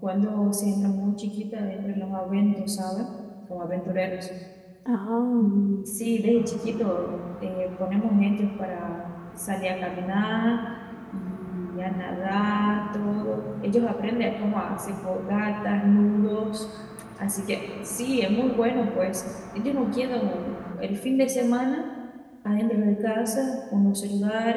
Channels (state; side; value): identical; both; correlation 1.00